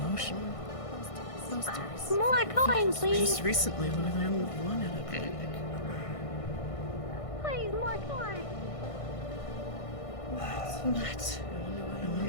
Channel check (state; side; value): late; right; 1.6 ms